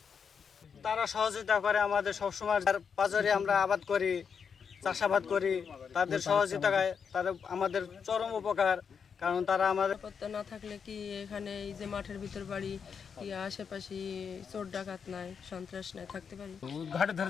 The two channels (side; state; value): right; quieter; 6.5 dB